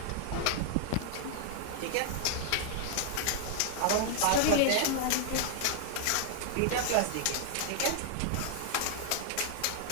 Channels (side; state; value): both; different; correlation 0.00